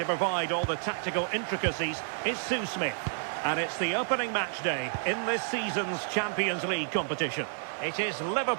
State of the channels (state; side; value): silent; left; 58 dB below the other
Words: provide all the tactical intricacies, is Sue Smith. And it's the opening match day in this season's Champions League competition. It is